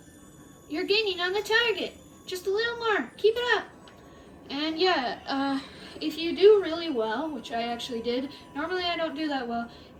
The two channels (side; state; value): both; identical; correlation 1.00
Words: You're gaining on the target. Just a little more. Keep it up. And yeah, if you do really well, which I actually did, normally I don't do that well,